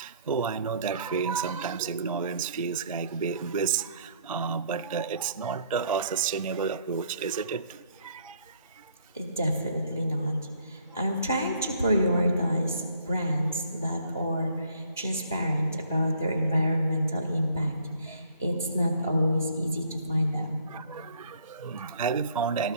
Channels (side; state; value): both; inverted; correlation -0.60